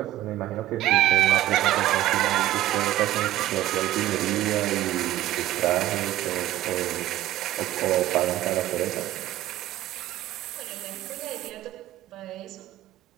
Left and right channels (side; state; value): left; quieter; 14.7 dB